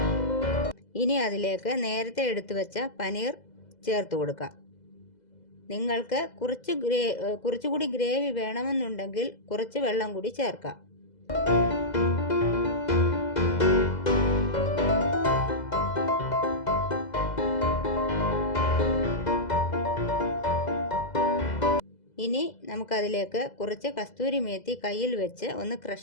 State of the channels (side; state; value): right; late; 2.0 ms